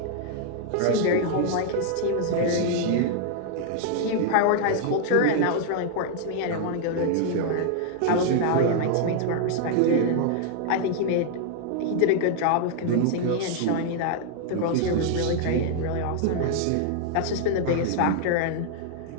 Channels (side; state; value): both; different; correlation 0.00